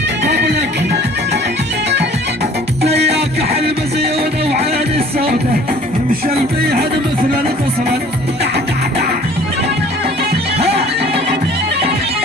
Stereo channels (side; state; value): both; normal; correlation 0.50